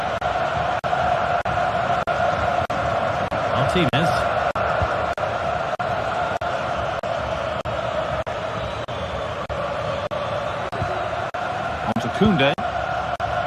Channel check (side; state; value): both; identical; correlation 1.00